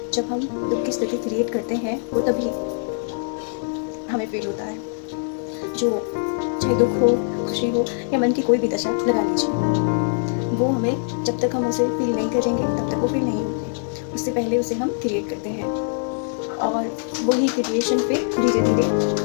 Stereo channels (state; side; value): silent; right; 64 dB below the other